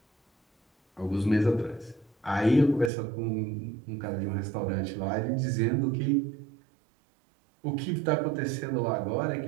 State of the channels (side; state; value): left; drops out; at 2.9 s